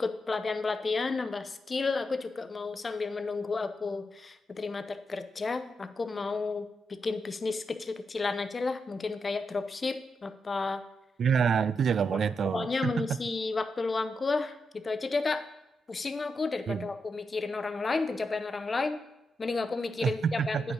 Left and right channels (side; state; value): both; normal; correlation 0.84